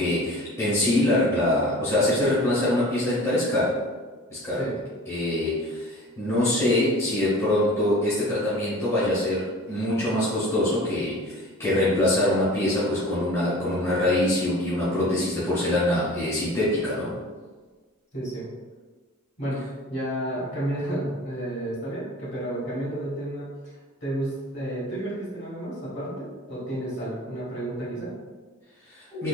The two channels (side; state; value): both; normal; correlation 0.41